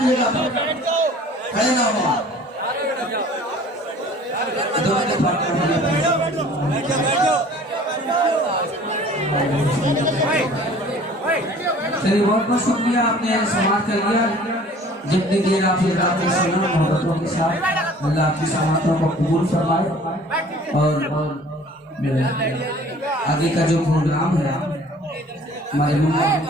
जगह पर, खड़े ना हो। चलिए बहुत बहुत शुक्रिया, आपने समाप्त कर लिया। जितनी देर आपने सुना मोहब्बतों के साथ, अल्लाह आपकी समातों को कबूल फरमाए। और आगे का जो प्रोग्राम है हमारे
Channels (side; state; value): both; normal; correlation 0.49